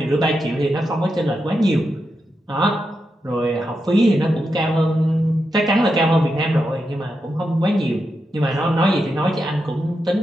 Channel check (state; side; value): normal; both; correlation 0.87